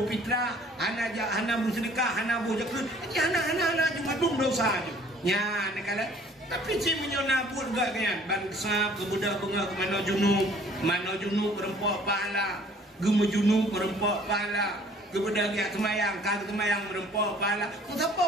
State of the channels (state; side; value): normal; both; correlation 0.55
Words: fitra, hana buh sedekah, hana buh zakat. Hana cuma dum dosa je. Nya nekala tapi si menyona pun gak kan bangsa kebudak bunga ke mano junub berempok pahala, gemu junub berempok pahala. Kebudak yang semayang, kagak semayang berempok pahala. Ku